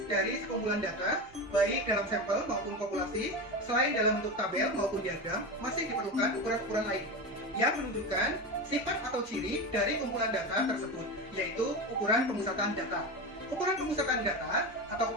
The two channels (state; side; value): noise; right; rumble, 25 dB below the sound